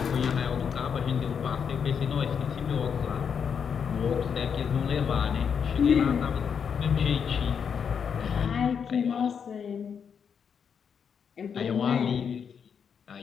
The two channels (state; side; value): quieter; right; 7.0 dB